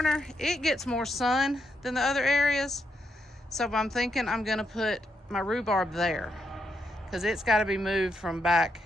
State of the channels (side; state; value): both; normal; correlation 0.81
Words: it gets more sun than the other areas. So I'm thinking I'm gonna put my rhubarb there, because it's got to be moved from back